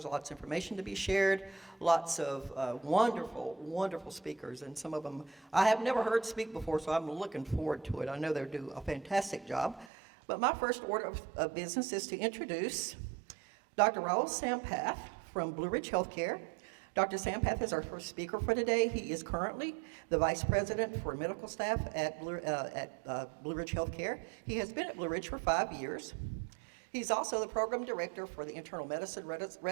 lots of information to be shared, lots of wonderful, wonderful speakers, and some of them I have never heard speak before, so I'm looking forward to it. I know they'll do a fantastic job. But my first order of business is to introduce Dr. Raul Sampath from Blue Ridge Healthcare. Dr. Sampath is our first speaker for today. He is currently the Vice President for Medical Staff at Blue Ridge Healthcare. He has been at Blue Ridge for 5 years. He's also the Program Director for the Internal Medicine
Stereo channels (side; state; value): left; drops out; at 9.9 s